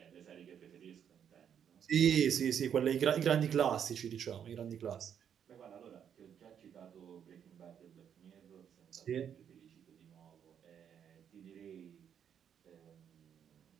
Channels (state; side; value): quieter; left; 8.5 dB